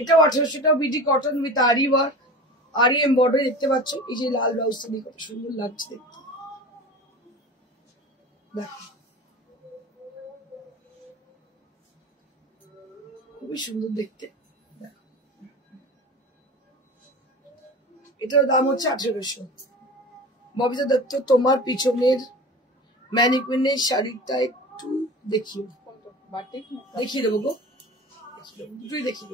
1800 টাকা। বিডি কটন উইথ আরি ওয়ার্ক, আরি এমব্রয়ডারি দেখতে পাচ্ছ। এই যে লাল ব্লাউজটা দিয়ে কত সুন্দর লাগছে দেখতে, দেখো খুবই সুন্দর দেখতে। এটার দাম হচ্ছে 1800। ববিতা দত্ত, তোমার পিছনের ম্যানিকুইনের শাড়িটা একটু দেখিও। দেখিয়ে দেবো গো, দুটোই দেখিয়ে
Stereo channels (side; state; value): both; normal; correlation 0.34